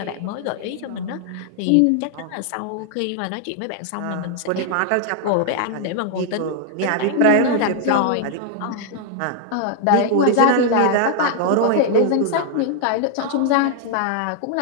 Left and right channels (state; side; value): different; both; correlation 0.00